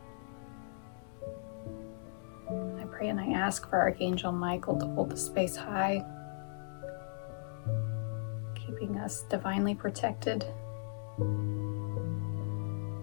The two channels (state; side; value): silent; right; digital silence